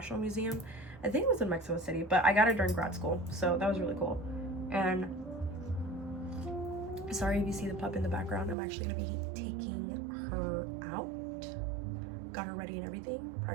museum. I think it was in Mexico City, but I got it during grad school, so that was really cool. And sorry if you see the pup in the background. I'm actually gonna be taking her out. Got her ready and everything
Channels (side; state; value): left; drops out; at 8.6 s